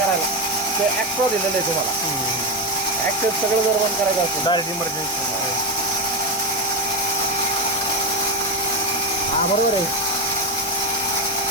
ते ॲक्ट्रो दिलेलं आहे तुम्हाला. ॲक्सेस सगळं जर बंद करायचं असेल डायरेक्ट इमर्जन्सी. हा बरोबर आहे.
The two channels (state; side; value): normal; both; correlation 0.12